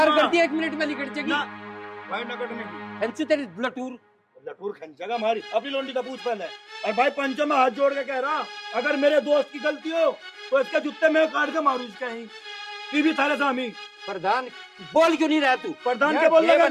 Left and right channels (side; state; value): both; identical; correlation 1.00